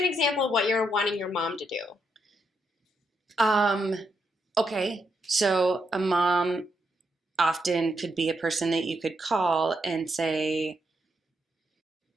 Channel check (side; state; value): both; normal; correlation 0.80